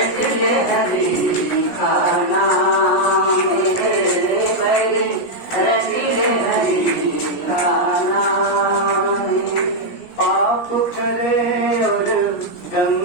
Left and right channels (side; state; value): right; late; 17 ms